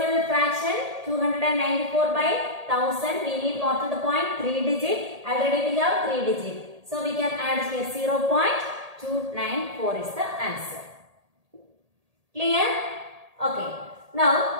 fraction? 294 by 1000. We need after the point 3 digit. Already we have 3 digit. So we can add here 0.294. 294 is the answer. Clear? Okay.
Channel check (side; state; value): left; late; 1.8 ms